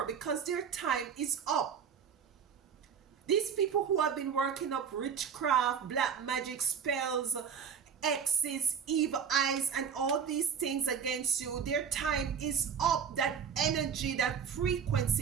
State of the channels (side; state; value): left; quieter; 7.1 dB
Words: because their time is up. These people who have been working up witchcraft, black magic spells, X's, evil eyes, and all these things against you, their time is up. That energy, that